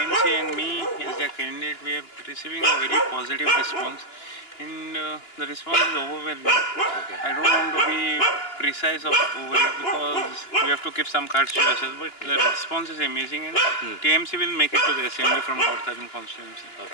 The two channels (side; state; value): right; late; 2.9 ms